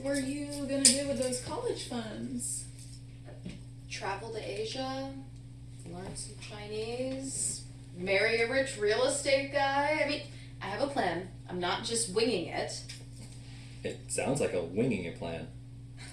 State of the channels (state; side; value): identical; both; correlation 1.00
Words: were you gonna do with those college funds? Travel to Asia, learn some Chinese, marry a rich real estate guy. I mean, I have a plan. I'm not just winging it. It sounds like a winging it plan.